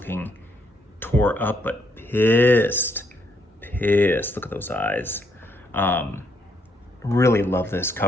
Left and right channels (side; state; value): both; normal; correlation 0.73